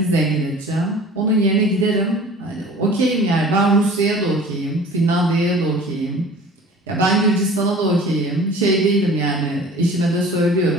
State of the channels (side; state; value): both; normal; correlation 0.44